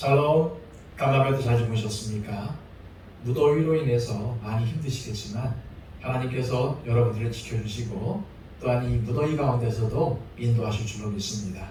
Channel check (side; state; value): both; identical; correlation 1.00